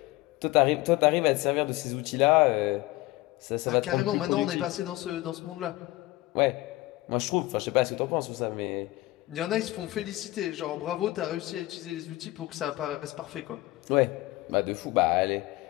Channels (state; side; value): quieter; right; 19.0 dB